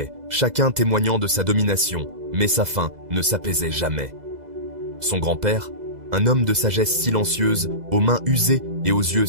chacun témoignant de sa domination, mais sa faim ne s'apaisait jamais. Son grand-père, un homme de sagesse silencieuse, aux mains usées et aux yeux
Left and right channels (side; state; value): left; late; 2.0 ms